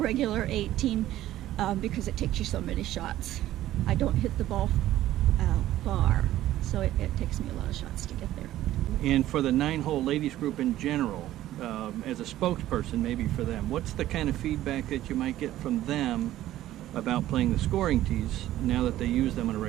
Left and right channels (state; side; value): quieter; left; 14.0 dB